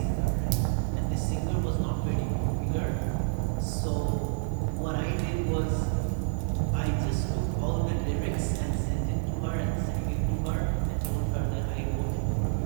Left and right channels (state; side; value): silent; left; digital silence